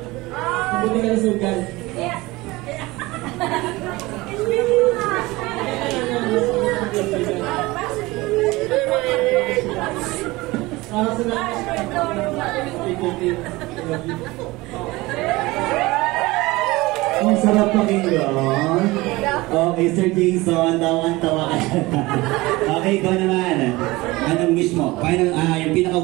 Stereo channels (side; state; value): left; quieter; 21.0 dB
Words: Mabuti kalusugan. Ang sarap pakinggan. Okay, Sir Jason, tawang-tawa ka. Okay, ikaw naman. Anong wish mo? Yung